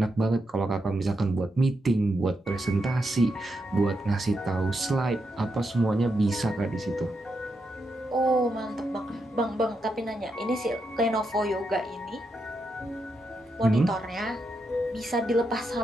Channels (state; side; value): normal; both; correlation 0.83